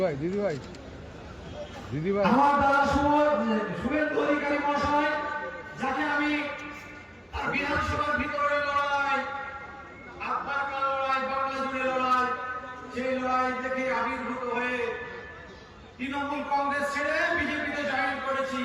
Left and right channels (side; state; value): both; identical; correlation 1.00